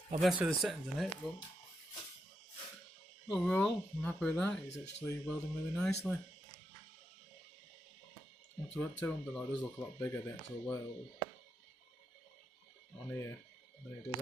I'll mess with the settings in it, but overall, I'm happy with that. It's actually welding really nicely. Up to 200, though, it does look a lot bigger, the actual weld on here than it does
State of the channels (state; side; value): normal; both; correlation 0.83